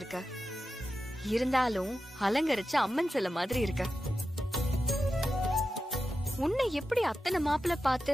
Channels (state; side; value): normal; both; correlation 0.91